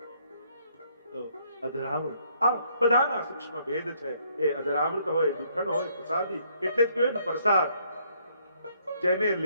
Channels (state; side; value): inverted; both; correlation -0.68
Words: અધરામૃત આ બધાના સૂક્ષ્મ ભેદ છે. એ અધરામૃત હોય, જૂઠણ હોય, પ્રસાદી એટલે જ કહેવાય ને પ્રસાદ. જેને